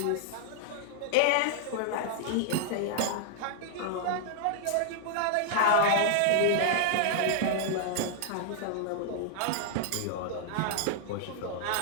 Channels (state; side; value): different; both; correlation -0.01